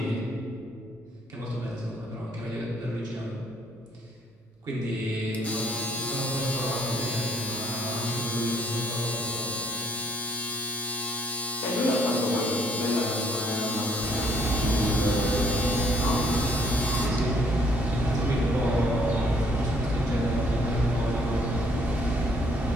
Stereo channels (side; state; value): both; normal; correlation 0.65